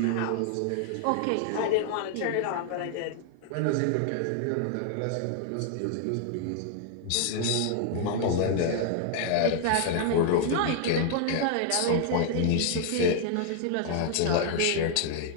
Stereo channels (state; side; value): different; both; correlation 0.00